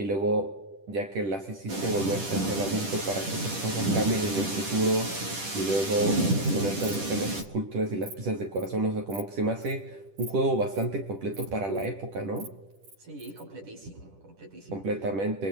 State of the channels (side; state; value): left; late; 10 ms